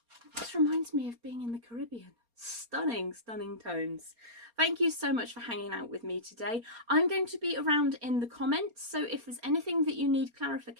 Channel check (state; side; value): late; left; 4.3 ms